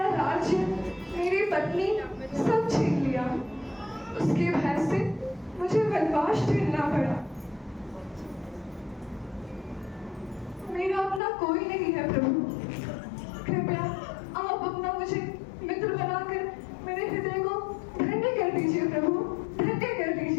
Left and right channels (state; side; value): drops out; right; at 11.2 s